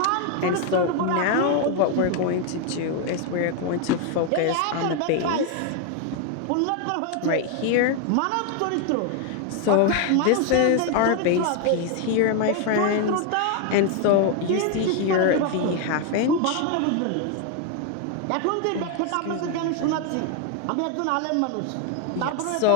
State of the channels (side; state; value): both; different; correlation 0.01